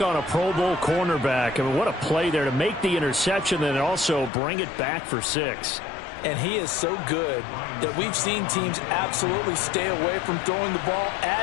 on a Pro Bowl cornerback. I mean, what a play there to make the interception and also bring it back for 6. And he is so good that we've seen teams absolutely stay away from throwing the ball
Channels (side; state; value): right; drops out; at 4.3 s